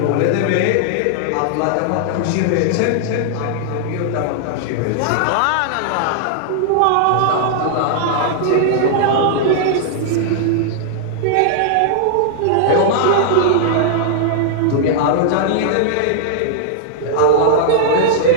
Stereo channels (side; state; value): both; different; correlation -0.01